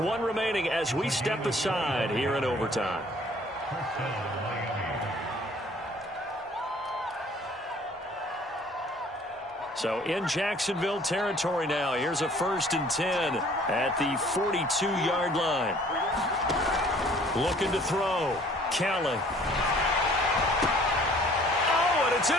one remaining as we step aside here in overtime. So in Jacksonville territory now. Here's a 1st and 10 at the 42-yard line. Looking to throw. Kelly. Oh, and it's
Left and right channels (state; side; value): normal; both; correlation 0.55